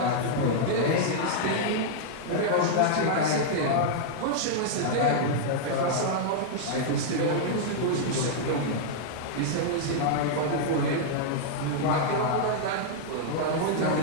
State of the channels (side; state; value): both; different; correlation -0.01